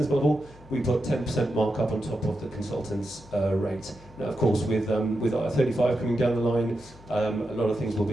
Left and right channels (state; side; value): noise; left; hum, 22 dB below the sound